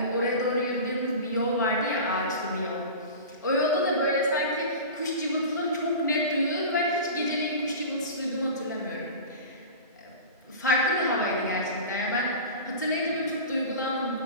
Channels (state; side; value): inverted; both; correlation -0.32